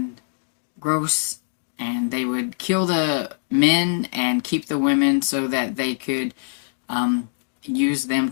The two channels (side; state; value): right; silent; digital silence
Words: gross, and they would kill the men and keep the women so that they could use them